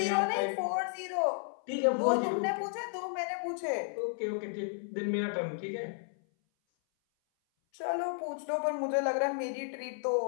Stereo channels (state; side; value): silent; right; 56 dB below the other